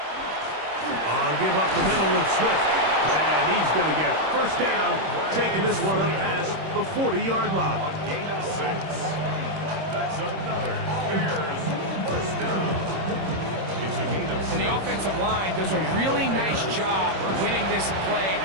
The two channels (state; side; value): late; left; 26 ms